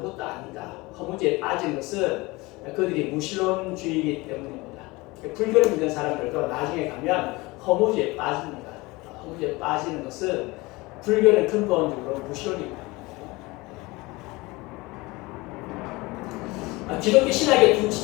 아니다. 허무주의에 빠진 것은 그들이 무신론주의이기 때문입니다. 불교를 믿는 사람들도 나중에 가면 허무주의에 빠집니다. 허무주의에 빠지는 것은 불교는 근본적으로 무신론입니다. 기독교 신학에 두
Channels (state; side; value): quieter; right; 22.8 dB